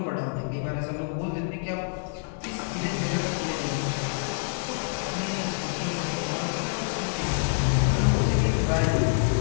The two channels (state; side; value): silent; right; digital silence